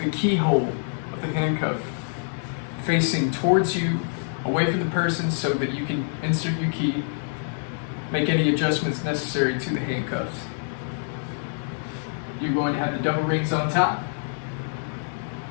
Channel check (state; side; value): silent; right; 61 dB below the other